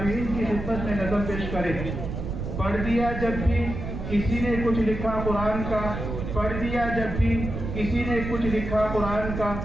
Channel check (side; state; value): right; noise; rumble, 5 dB below the sound